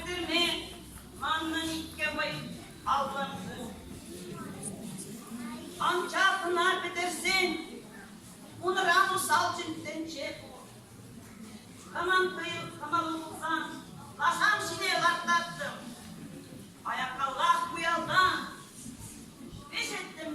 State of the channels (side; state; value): both; identical; correlation 1.00